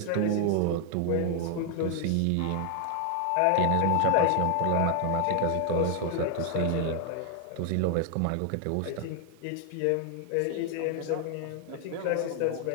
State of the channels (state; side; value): different; both; correlation 0.00